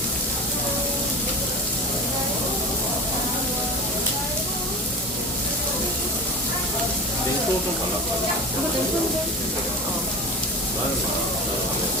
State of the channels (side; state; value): both; normal; correlation 0.31